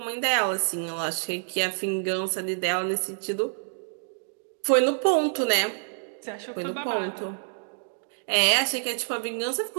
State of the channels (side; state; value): left; silent; digital silence